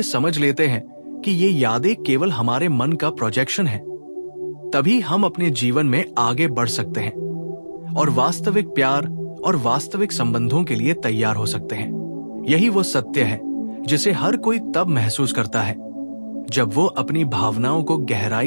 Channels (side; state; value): both; inverted; correlation -1.00